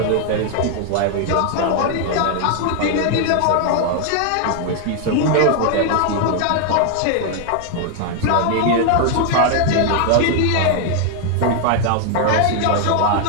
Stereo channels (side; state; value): both; different; correlation 0.00